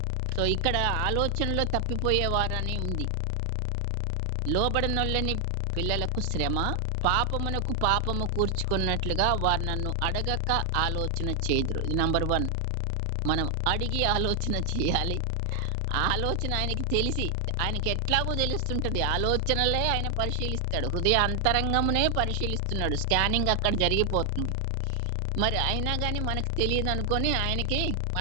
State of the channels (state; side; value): normal; both; correlation 0.00